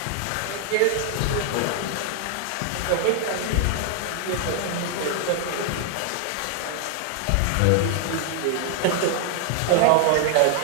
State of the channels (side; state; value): both; different; correlation 0.00